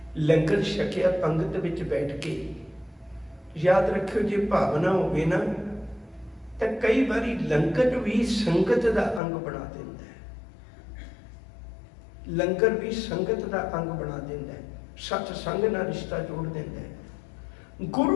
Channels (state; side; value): drops out; right; at 9.2 s